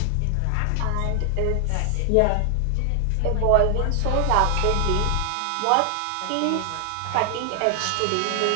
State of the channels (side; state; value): both; different; correlation 0.00